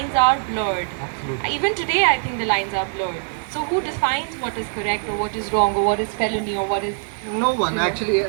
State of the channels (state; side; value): silent; left; 64 dB below the other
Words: are blurred. Absolutely. Even today, I think the lines are blurred. So, who defines what is correct or what is wrong or what is felony or what is? No one actually,